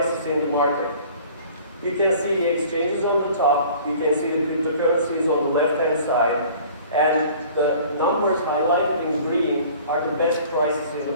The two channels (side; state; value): both; inverted; correlation -0.48